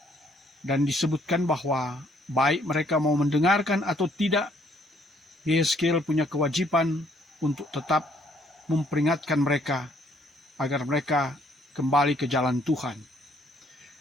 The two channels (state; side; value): normal; both; correlation 0.66